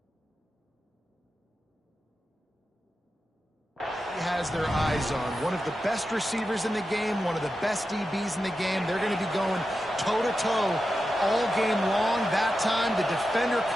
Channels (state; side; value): normal; both; correlation 0.91